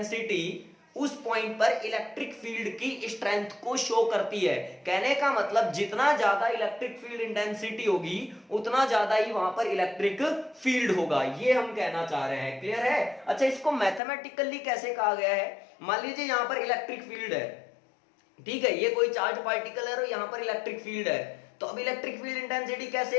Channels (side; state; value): right; drops out; at 14.0 s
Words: उस पॉइंट पर इलेक्ट्रिक फील्ड की स्ट्रेंथ को शो करती है। कहने का मतलब जितना ज्यादा इलेक्ट्रिक फील्ड इंटेंसिटी होगी उतना ज्यादा ही वहां पर इलेक्ट्रिक फील्ड होगा, ये हम कहना चाह रहे हैं। क्लियर है? अच्छा, इसको मैथमेटिकली कैसे कहा गया है? मान लीजिए यहां पर इलेक्ट्रिक फील्ड है, ठीक है, ये कोई चार्ज पार्टिकल है और यहां पर इलेक्ट्रिक फील्ड है, तो अब इलेक्ट्रिक फील्ड इंटेंसिटी